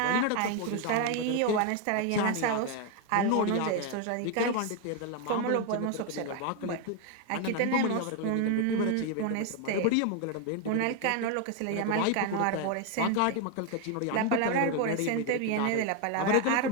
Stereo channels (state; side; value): different; both; correlation 0.01